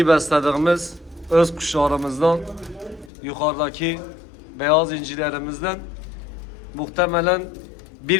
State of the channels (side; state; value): right; drops out; at 3.1 s